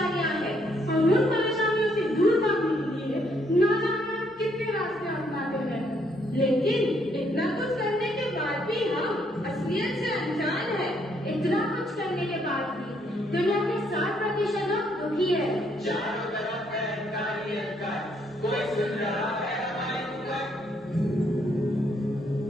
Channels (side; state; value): both; normal; correlation 0.71